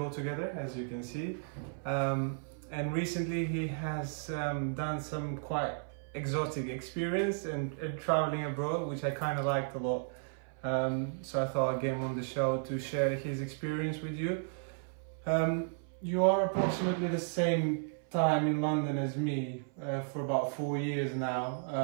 together, as you can see. And recently he has done some quite exotic experience and traveling abroad, which I kind of liked a lot. So I thought I'd get him on the show to share his experience with you. You are approximately the same time in London as me, for about 4 years now.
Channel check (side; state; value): left; silent; 55 dB below the other